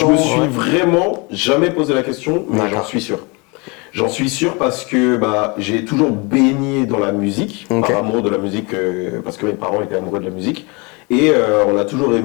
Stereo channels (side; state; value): right; quieter; 29.1 dB